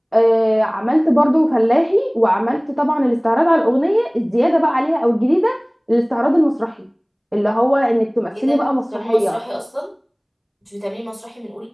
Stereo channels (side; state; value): both; identical; correlation 1.00